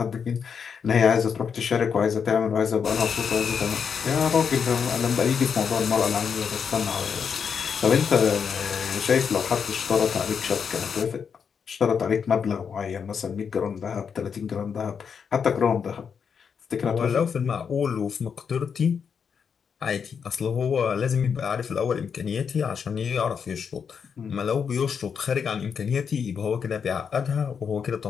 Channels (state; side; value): quieter; right; 6.7 dB